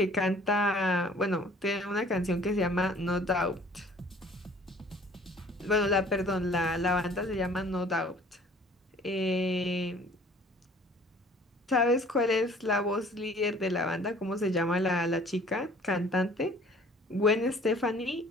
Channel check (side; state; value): both; normal; correlation 0.53